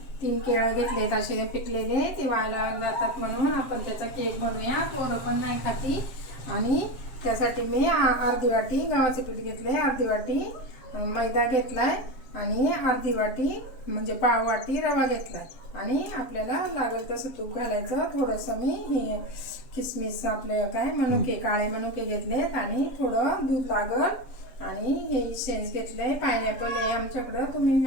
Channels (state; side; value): late; right; 7.4 ms